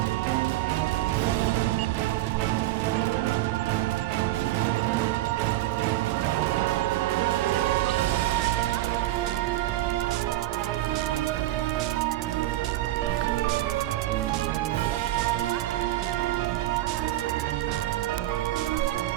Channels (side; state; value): left; quieter; 15.5 dB